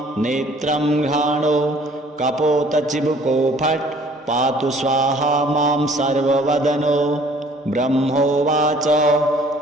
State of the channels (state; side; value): normal; both; correlation 0.55